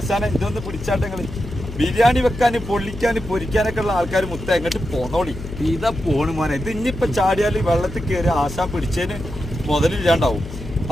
ഇതൊന്ന് പിടിച്ചാട്ടങ്ങള് ബിരിയാണി വെക്കാന് പൊള്ളിക്കാന് പൊരിക്കാനൊക്കെ ഉള്ള ആൾക്കാർ മുത്ത എങ്ങോട്ട് പോന്നോളി. ഇതാ പോണ് മോനെ. ഇത് ഇനിയിപ്പൊ ചാടിയാല് വെള്ളത്തിൽ കയറി ആശാൻ പിടിച്ചതിന് മുതലില്ലാണ്ടാവും.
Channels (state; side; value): noise; left; hum, 11 dB below the sound